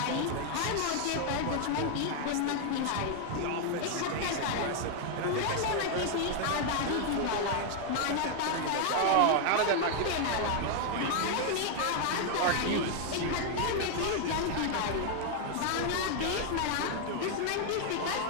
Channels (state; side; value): different; both; correlation 0.00